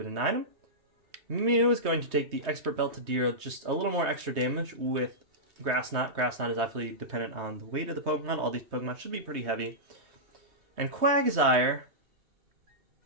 it an item. Mew is going to take the Expert Belt to deal just a little more extra damage with Grass Knot. Grass Knot is absolutely dependent on the weight of the Pokemon. All these Pokemon should be pretty heavy. And Quagsire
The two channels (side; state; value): left; late; 3.2 ms